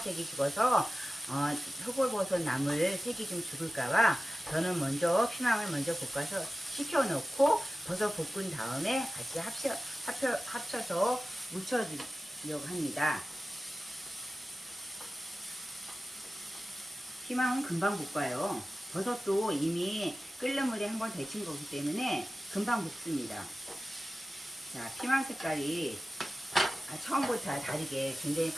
죽어서 표고버섯 나물 색이 좀 죽을까봐 저는 먼저 피망을 먼저 볶아서 식혀놓고 버섯 볶은 다음에 같이 합쳐서 무쳐주려고 합니다. 피망은 금방 볶아요. 버섯도 이미 끓는 물에 한번 데친 거기 때문에 금방 볶습니다. 자, 피망 색깔이 처음부터 다르게 굉장히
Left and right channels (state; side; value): normal; both; correlation 0.95